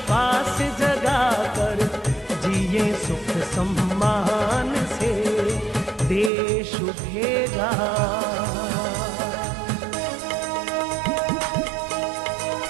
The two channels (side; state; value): left; drops out; at 6.3 s